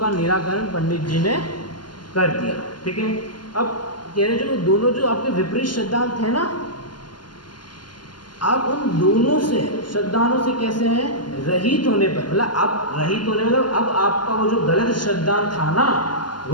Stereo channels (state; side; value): late; right; 0.71 ms